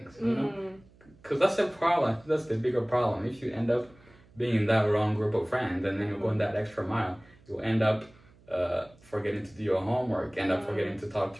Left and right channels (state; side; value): noise; right; hum, 27 dB below the sound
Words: you know, because that's the problem. That's the bigger problem. If you end up being in that wrong group of friends and then you're going that extra mile, you'll end up forgetting to do your homework, end up forgetting to talk